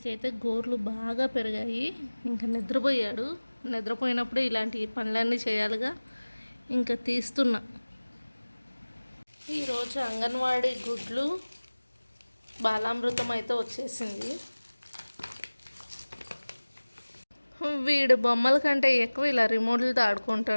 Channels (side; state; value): both; inverted; correlation -1.00